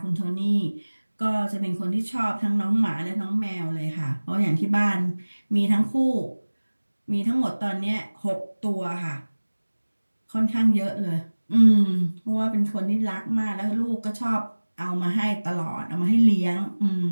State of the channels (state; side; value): inverted; both; correlation -1.00